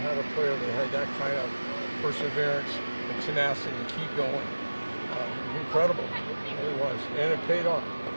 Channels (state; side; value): inverted; both; correlation -1.00